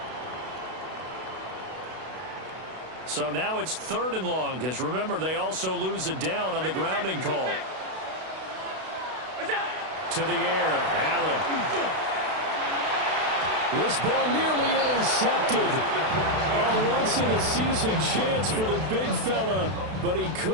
So now it's 3rd and long, because remember, they also lose a down on the grounding call. To the air, Allen. This ball nearly intercepted. A once-in-a-season chance for the big fella, but he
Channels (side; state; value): left; late; 32 ms